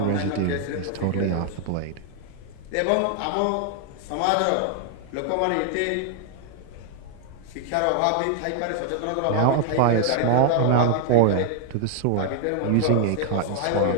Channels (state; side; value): different; both; correlation 0.00